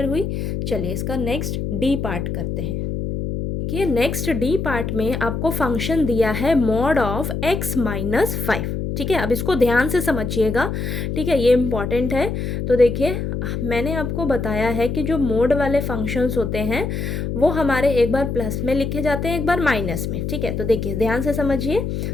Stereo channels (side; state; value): left; noise; hum, 3 dB below the sound